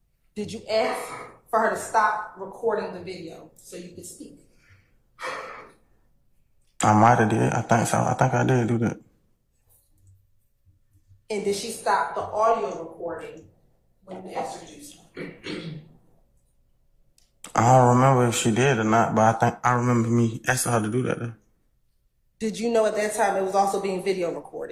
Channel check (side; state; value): both; identical; correlation 1.00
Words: Did you ask for her to stop recording the video so you could speak? I might have did. I think so. I think I did do that. And did she stop the audio recording when you asked her to do so? I don't remember if she did or not, but I think I remember me asking her to do that. Though. Did you know at that time it was also being video